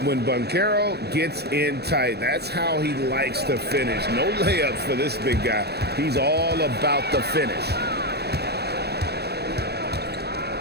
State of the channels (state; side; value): late; left; 0.48 ms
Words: When Banchero gets in tight, that's how he likes to finish. No layups for this big guy. He's all about the finish.